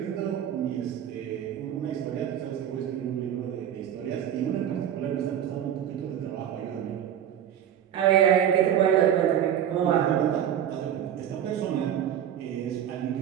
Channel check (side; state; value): left; quieter; 9.9 dB